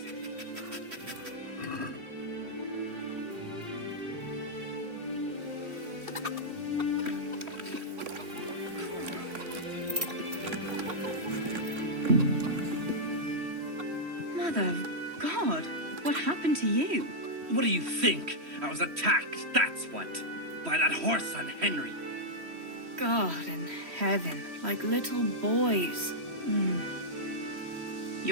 Mother of God, what happened to you? What do you think? I was attacked, that's what. By that horse on Henry. God in heaven, like little boys.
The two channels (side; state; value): left; late; 3.1 ms